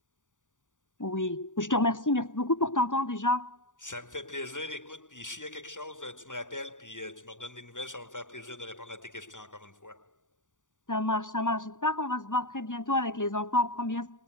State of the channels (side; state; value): right; late; 0.87 ms